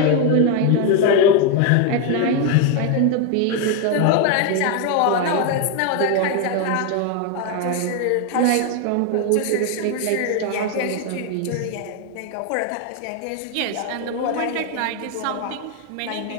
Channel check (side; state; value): both; different; correlation 0.01